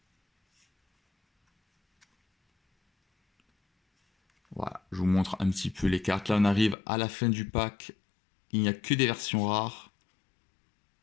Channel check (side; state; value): right; drops out; at 6.8 s